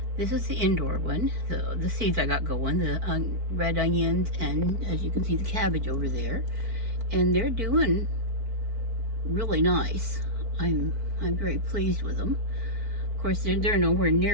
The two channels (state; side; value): late; left; 4.5 ms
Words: This is the indoor one, the seeds I got going, the red onions, and as you can see, the cabbage over there. And they're doing really nice. I'm very pleased with them. Of course, they're nowhere